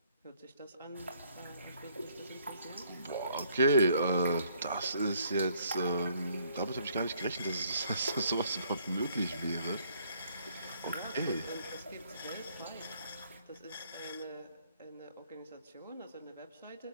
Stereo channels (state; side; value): inverted; both; correlation -0.65